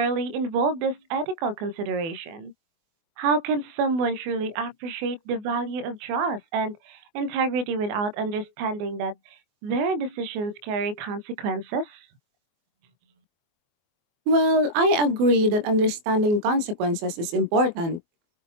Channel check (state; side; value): late; left; 24 ms